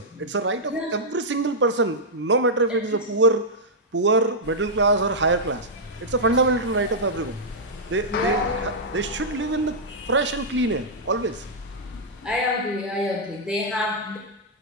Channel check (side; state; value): both; normal; correlation -0.07